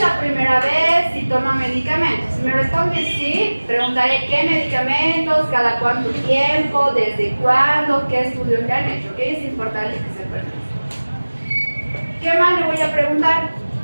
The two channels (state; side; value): inverted; both; correlation -1.00